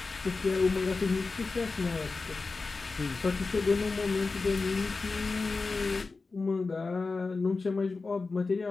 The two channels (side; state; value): right; quieter; 4.0 dB